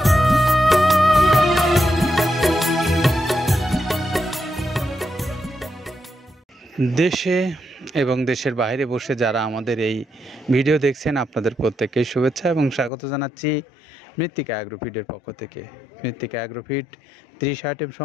দেশে এবং দেশের বাইরে বসে যারা আমাদের এই ভিডিও দেখছেন আপনাদের প্রত্যেককে শুভেচ্ছা এবং স্বাগত জানাচ্ছি মৃত্তিকা অ্যাগ্রোফিডের পক্ষ থেকে। মৃত্তিকা অ্যাগ্রোফিড 30 আইটেম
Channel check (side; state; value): right; drops out; at 12.9 s